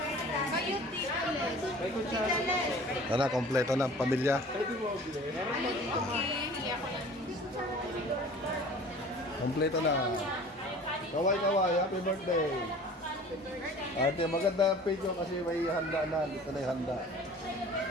Kayo dito. Ano, kompleto na, pamilya. Kompleto na. Kaway, happy birthday. Ate, maganda ang video kasi may handa na. Dito na yung handa.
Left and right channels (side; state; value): both; normal; correlation 0.45